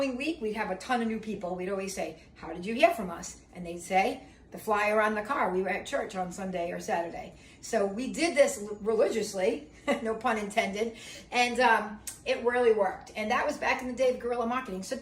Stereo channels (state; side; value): identical; both; correlation 1.00